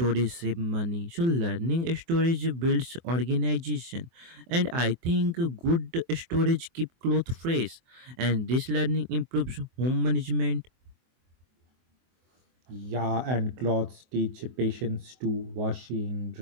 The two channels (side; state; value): left; late; 24 ms